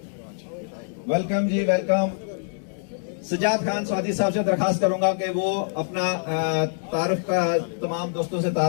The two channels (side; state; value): right; silent; digital silence